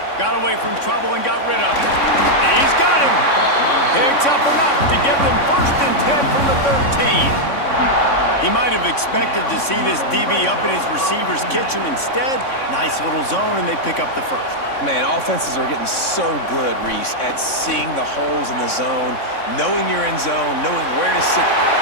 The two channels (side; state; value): right; late; 3.6 ms